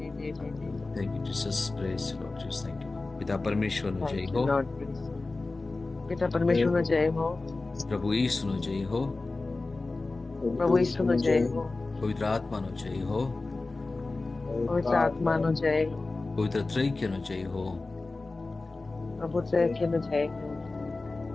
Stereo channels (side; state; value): right; quieter; 3.4 dB